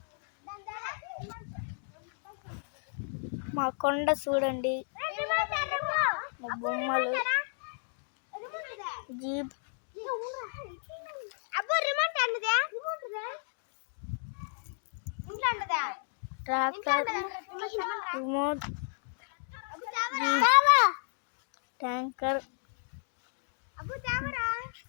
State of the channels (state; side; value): silent; right; digital silence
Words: మా కొండ చూడండి, మా బొమ్మలు, jeep, tractor, remote, tanker,